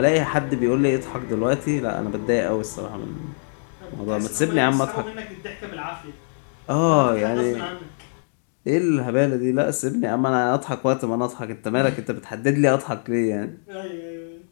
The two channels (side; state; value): right; silent; digital silence